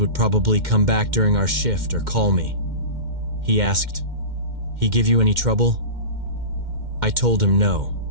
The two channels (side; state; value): left; late; 2.1 ms